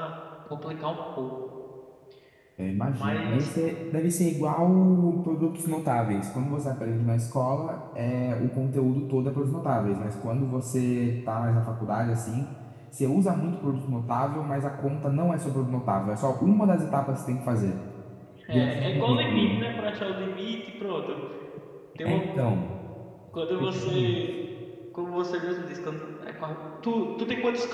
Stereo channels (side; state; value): both; identical; correlation 1.00